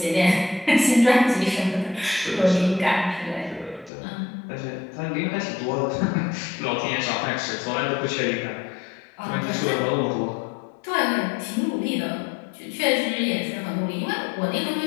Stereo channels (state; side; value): drops out; right; at 3.9 s